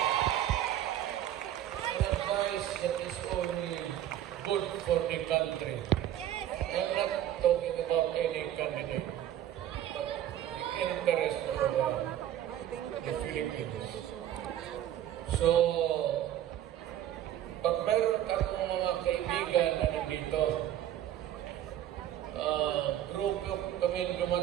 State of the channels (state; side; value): quieter; left; 11.7 dB